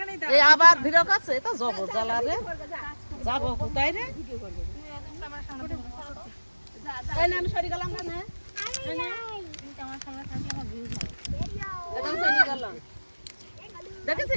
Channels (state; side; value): inverted; both; correlation -1.00